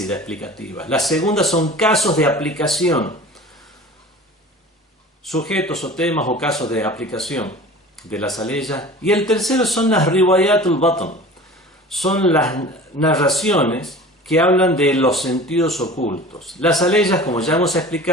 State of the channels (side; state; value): both; normal; correlation 0.40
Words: explicativas. Las segundas son casos de aplicación, sujetos o temas o casos de aplicación de las aleyas. Y el tercero son las riwayatul batn, son las narraciones que hablan de los sentidos ocultos. Las aleyas, como ya hemos